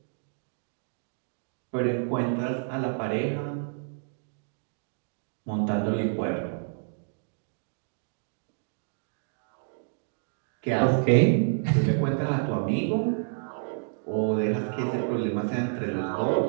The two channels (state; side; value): silent; left; digital silence